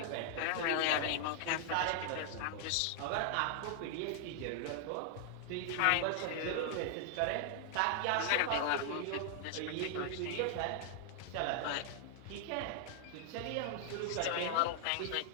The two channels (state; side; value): different; both; correlation 0.00